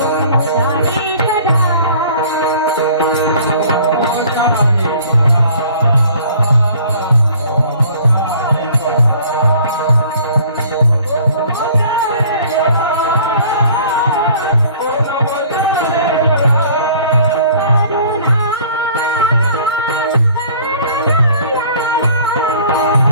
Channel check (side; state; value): both; inverted; correlation -0.52